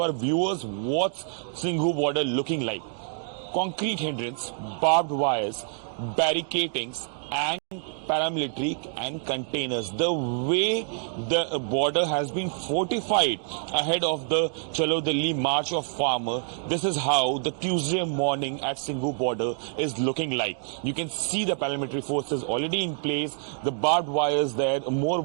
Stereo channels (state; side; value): silent; left; 60 dB below the other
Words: our viewers what's Singhu border looking like. Concrete hindrance, barbed wires, barricadings, and paramilitary and containers. The way the border has been fortified ahead of the Chalo Delhi March of Farmer, this is how the Tuesday morning at Singhu border is looking like. You can see the paramilitary forces already in place, the barbed wires there, more